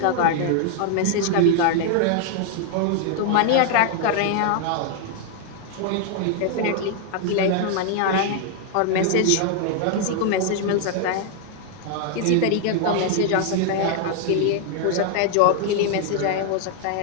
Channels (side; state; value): both; different; correlation 0.00